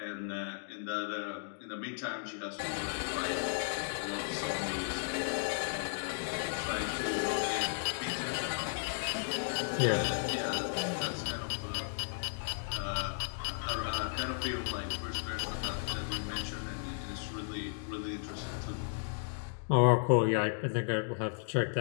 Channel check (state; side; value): silent; right; digital silence